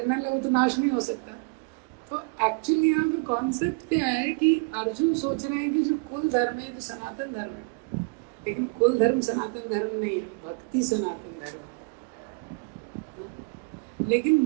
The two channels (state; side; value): quieter; left; 32.6 dB